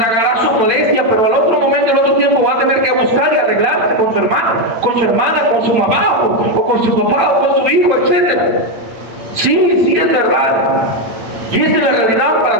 su molestia, pero al otro momento, al otro tiempo va a tener que buscar y arreglarse con su hermano, con su hermana, con su mamá, o con su papá, o con su hijo, etc. Sí, es verdad. Y esta es la realidad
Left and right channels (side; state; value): left; late; 8.7 ms